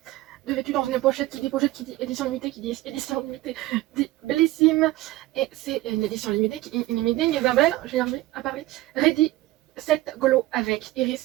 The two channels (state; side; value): quieter; left; 17.2 dB